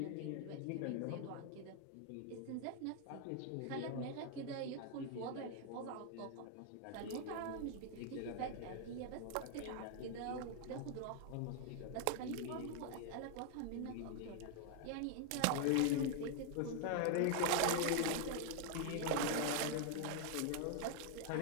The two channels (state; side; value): different; both; correlation 0.00